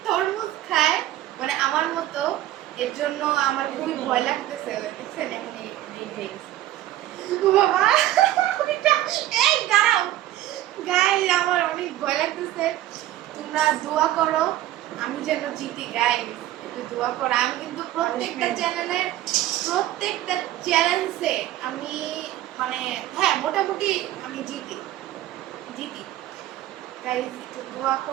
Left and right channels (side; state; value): left; quieter; 14.1 dB